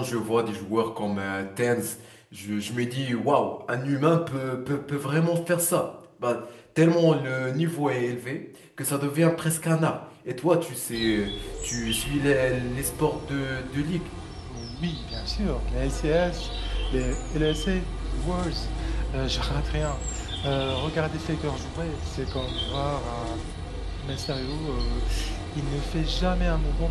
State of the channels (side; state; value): both; identical; correlation 1.00